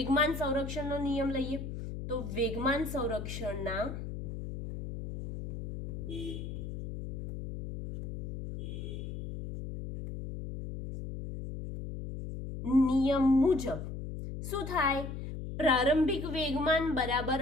સંરક્ષણનો નિયમ લઈએ. તો વેગમાન સંરક્ષણના નિયમ મુજબ શું થાય? પ્રારંભિક વેગમાન બરાબર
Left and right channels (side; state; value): left; noise; hum, 7 dB below the sound